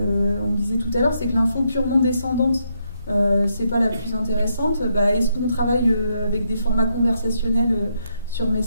disait tout à l'heure, c'est que l'info purement descendante, c'est pas la plus intéressante. Est-ce qu'on travaille avec des formats conversationnels sur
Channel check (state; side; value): inverted; both; correlation -0.79